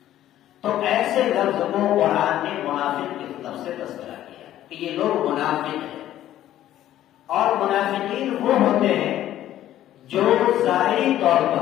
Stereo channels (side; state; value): right; quieter; 12.7 dB